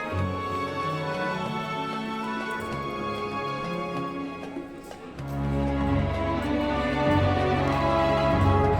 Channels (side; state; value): both; identical; correlation 1.00